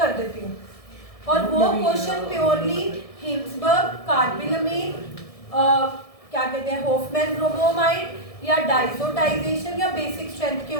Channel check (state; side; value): late; right; 1.7 ms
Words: देती हूँ और वो क्वेश्चन प्योरली हिंसबर्ग, कार्बिलमीन, क्या कहते हैं, हॉफमैन ब्रोमोमाइड या डाइजोटाइजेशन या बेसिक स्ट्रेंथ के